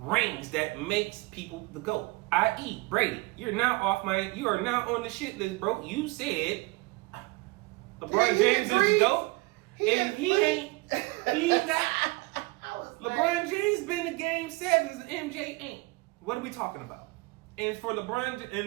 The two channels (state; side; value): quieter; left; 24.3 dB